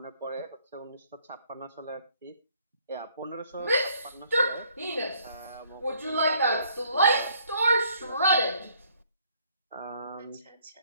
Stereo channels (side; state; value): both; inverted; correlation -0.64